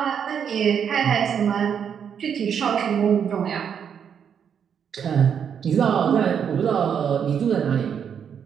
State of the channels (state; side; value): quieter; left; 7.8 dB